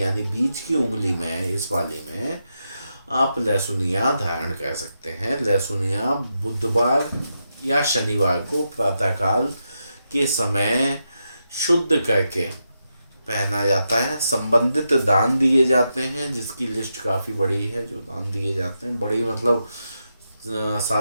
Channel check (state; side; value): inverted; both; correlation -0.86